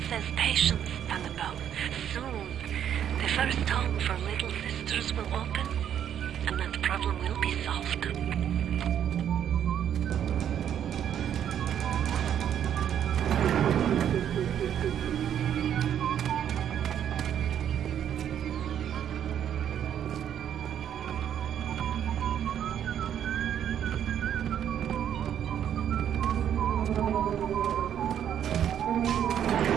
says patience, Annabelle. Soon, the first home for little sisters will open, and that problem will be solved.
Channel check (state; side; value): quieter; left; 9.6 dB